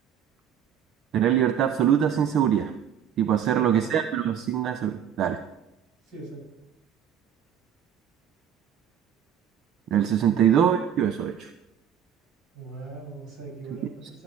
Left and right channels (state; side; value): quieter; left; 9.0 dB